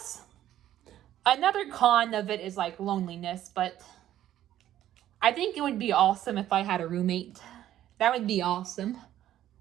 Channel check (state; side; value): quieter; left; 12.4 dB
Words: another con of it is like loneliness, but I think it would be awesome if I had a roommate. That would be awesome.